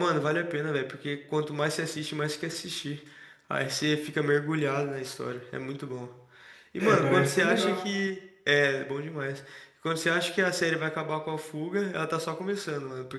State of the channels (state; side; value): identical; both; correlation 1.00